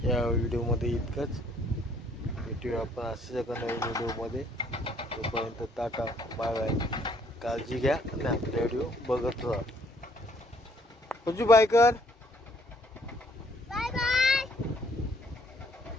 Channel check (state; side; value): normal; both; correlation 0.64